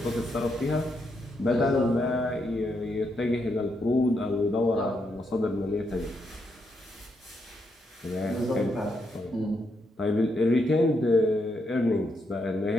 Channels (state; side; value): normal; both; correlation 0.80